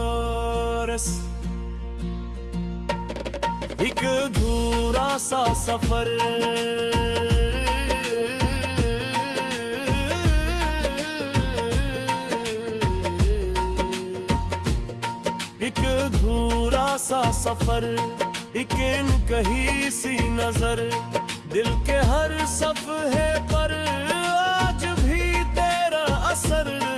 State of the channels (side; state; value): both; identical; correlation 1.00